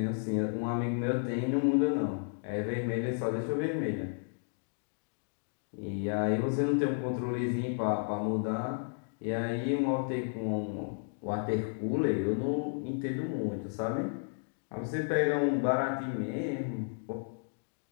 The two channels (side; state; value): right; silent; digital silence